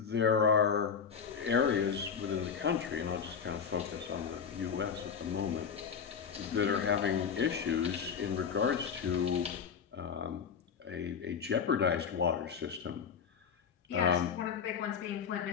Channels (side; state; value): right; quieter; 6.7 dB